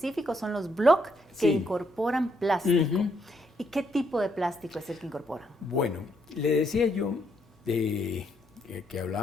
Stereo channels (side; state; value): both; normal; correlation 0.74